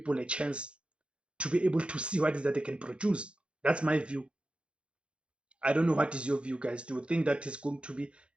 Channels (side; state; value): left; late; 0.058 ms